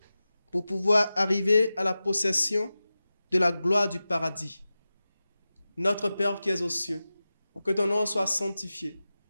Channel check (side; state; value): both; inverted; correlation -0.95